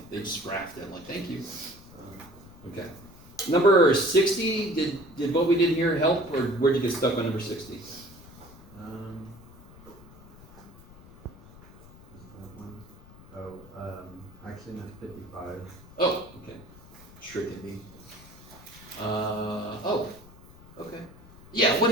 They just graphed it. I'm like, thank you. Okay. Number 60, did what we did here help, or where'd you get stuck on number 60? Actually not 55. Oh, okay. Tricking me. Okay. Yeah, what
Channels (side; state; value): left; noise; rumble, 20 dB below the sound